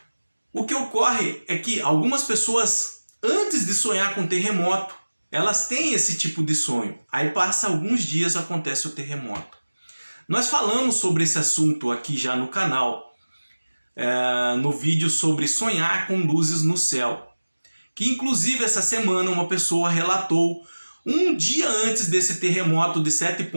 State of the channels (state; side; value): inverted; both; correlation -1.00